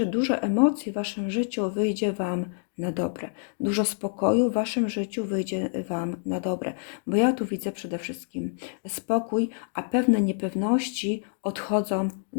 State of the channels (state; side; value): silent; right; 60 dB below the other